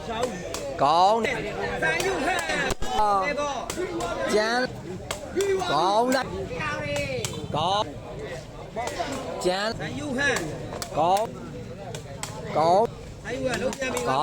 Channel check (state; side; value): identical; both; correlation 1.00